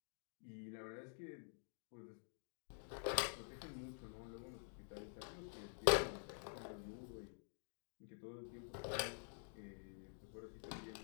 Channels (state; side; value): silent; right; digital silence